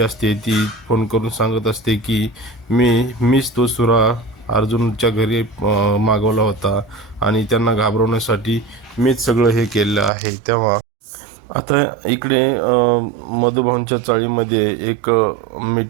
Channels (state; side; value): drops out; left; at 10.1 s